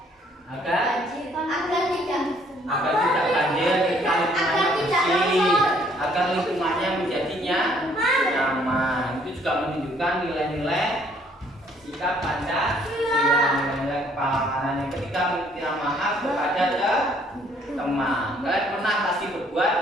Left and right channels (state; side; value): normal; both; correlation 0.63